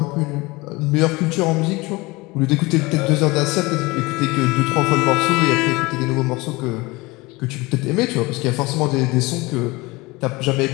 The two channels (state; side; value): quieter; right; 23.0 dB